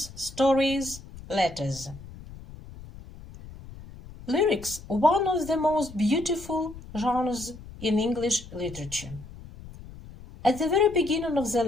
stories, letters. Lyrics, one of the most beautiful genres in English literature. At the very beginning of the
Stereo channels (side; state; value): left; noise; rumble, 16 dB below the sound